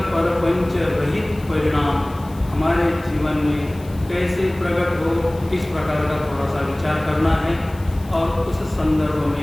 परपंच रहित परिणाम हमारे जीवन में कैसे प्रकट हो, इस प्रकार का थोड़ा सा विचार करना है और उस संदर्भ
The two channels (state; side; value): noise; left; hiss, 24 dB below the sound